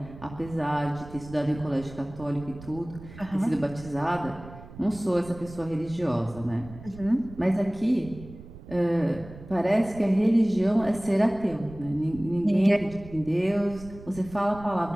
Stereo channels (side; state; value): right; noise; rumble, 16 dB below the sound